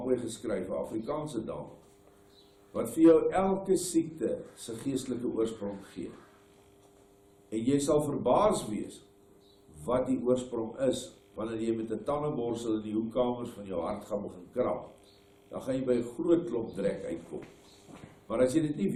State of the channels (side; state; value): both; identical; correlation 1.00